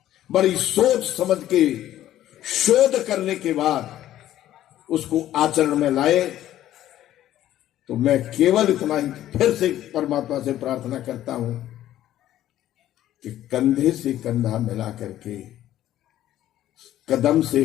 बड़ी सोच समझ के शोध करने के बाद उसको आचरण में लाए। तो मैं केवल इतना ही फिर से परमात्मा से प्रार्थना करता हूं कि कंधे से कंधा मिला करके, कदम से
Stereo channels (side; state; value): right; quieter; 12.9 dB